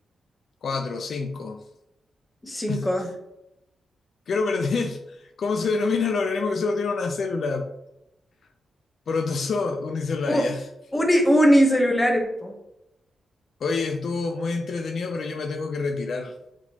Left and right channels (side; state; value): both; normal; correlation 0.87